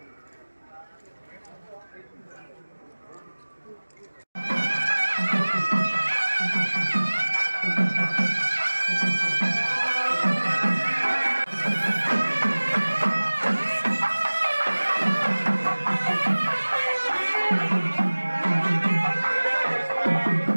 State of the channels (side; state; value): both; inverted; correlation -1.00